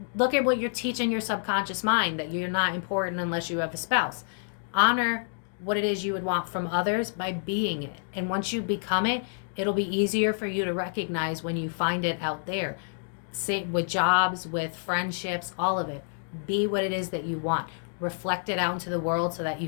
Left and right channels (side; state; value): right; silent; digital silence